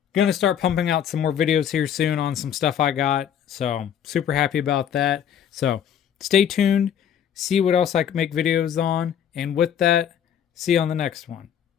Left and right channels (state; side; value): quieter; right; 9.1 dB